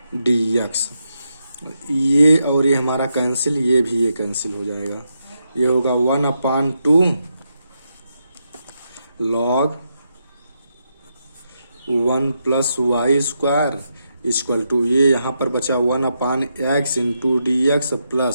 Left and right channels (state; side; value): inverted; both; correlation -0.83